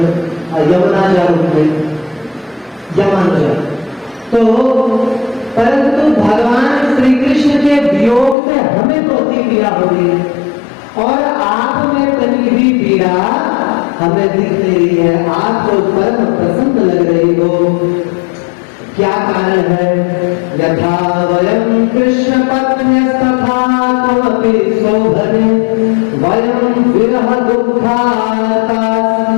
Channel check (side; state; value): right; drops out; at 8.3 s